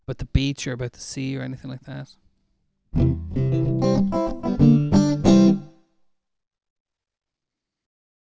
beach or about the sea or anything like that?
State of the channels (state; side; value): identical; both; correlation 1.00